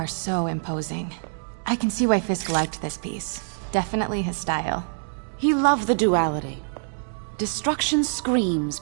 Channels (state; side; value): silent; left; digital silence